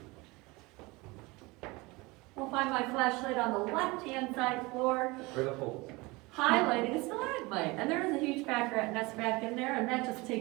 We'll find my flashlight on the left-hand side floor, Where the holes? highlighting a stalagmite. And there is a huge pack rat nest back in there, and that just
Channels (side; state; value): left; quieter; 23.7 dB